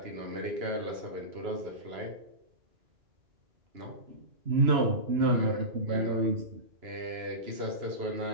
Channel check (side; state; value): left; late; 2.9 ms